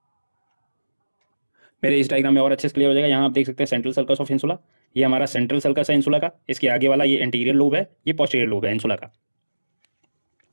मेरे इस डायग्राम में और अच्छे से क्लियर हो जाएगा। यहाँ आप देख सकते हैं सेंट्रल सर्कस ऑफ इंसुला, ये हमारा सेंट्रल सर्कस है इंसुला का, इसके आगे वाला ये एंटीरियर लोब है, ये पोस्टीरियर लोब है इंसुला का।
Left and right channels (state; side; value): inverted; both; correlation -1.00